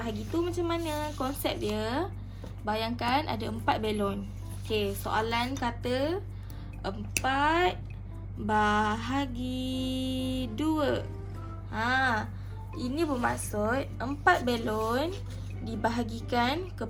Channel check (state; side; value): identical; both; correlation 1.00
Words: tu macam mana konsep dia? Bayangkan ada 4 belon. Okey, soalan kata 4 bahagi 2. Ini bermaksud 4 belon dibahagikan